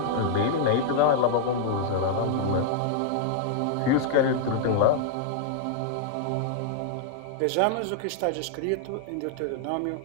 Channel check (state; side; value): different; both; correlation -0.01